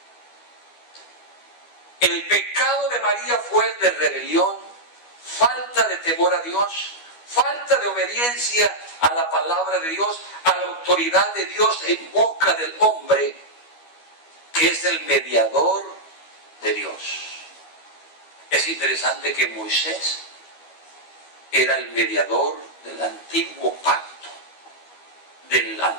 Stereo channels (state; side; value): late; right; 12 ms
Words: El pecado de María fue el de rebelión, falta de temor a Dios, falta de obediencia a la palabra de Dios, a la autoridad de Dios en boca del hombre, que es el mediador de Dios. Es interesante que Moisés era el mediador del antiguo pacto, del